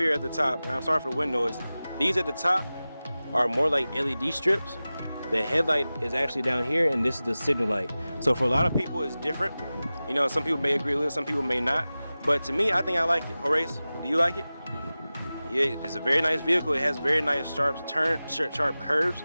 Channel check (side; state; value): both; inverted; correlation -0.96